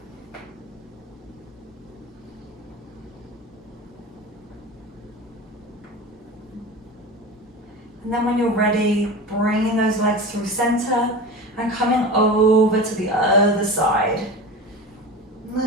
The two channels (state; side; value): normal; both; correlation 0.30